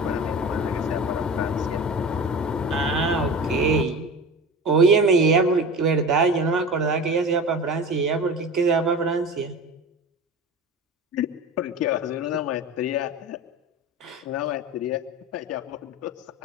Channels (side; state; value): both; normal; correlation 0.32